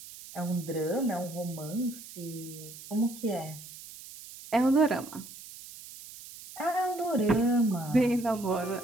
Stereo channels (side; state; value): right; noise; hiss, 15 dB below the sound